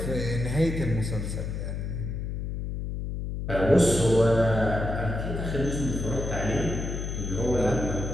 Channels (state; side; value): noise; left; hum, 4 dB below the sound